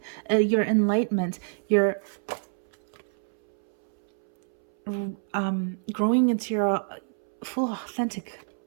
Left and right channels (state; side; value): silent; left; 60 dB below the other